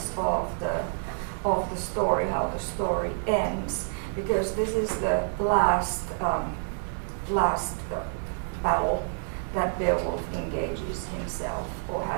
of the story, how the story ends, because this is the last battle that Beowulf engages himself, or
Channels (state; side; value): silent; left; digital silence